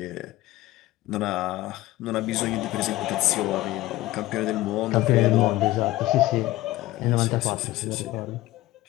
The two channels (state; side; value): quieter; right; 17.0 dB